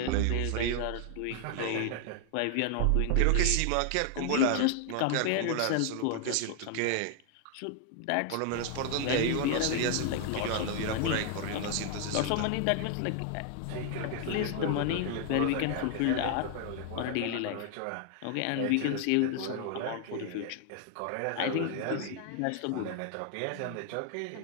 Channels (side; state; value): both; different; correlation 0.00